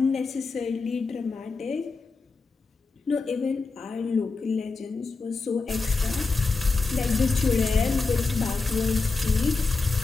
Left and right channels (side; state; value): right; quieter; 4.2 dB